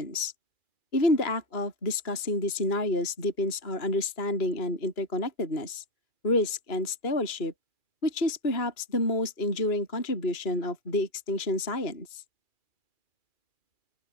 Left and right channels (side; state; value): right; late; 2.4 ms